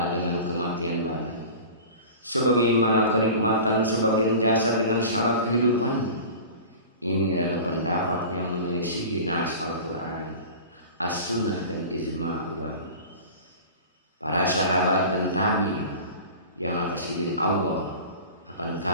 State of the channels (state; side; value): inverted; both; correlation -0.37